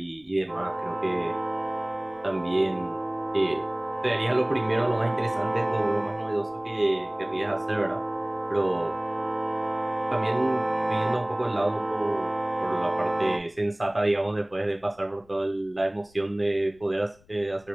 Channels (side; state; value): left; noise; rumble, 30 dB below the sound